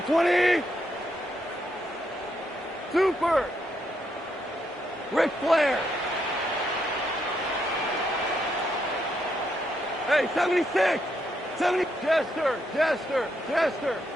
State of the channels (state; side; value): normal; both; correlation 0.78